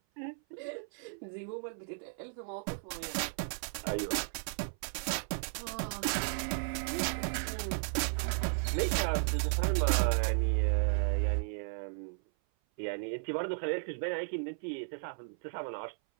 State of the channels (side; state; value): left; silent; 55 dB below the other